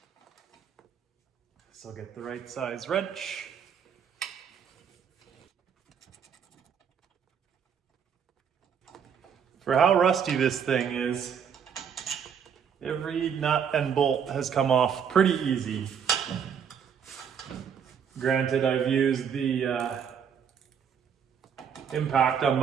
So I'll get the right size wrench. For how rusty this thing is, every nut and bolt has come off pretty easy. Granted, I've used the impact on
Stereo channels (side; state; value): left; quieter; 7.5 dB